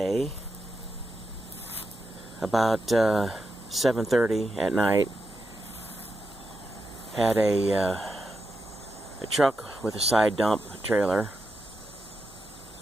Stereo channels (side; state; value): both; normal; correlation 0.86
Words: about 7:30 at night, had a truck with a side dump trailer